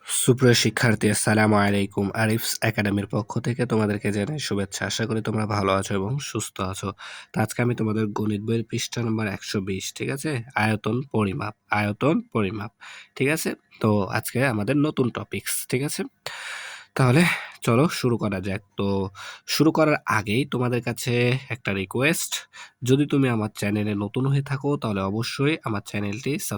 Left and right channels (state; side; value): identical; both; correlation 1.00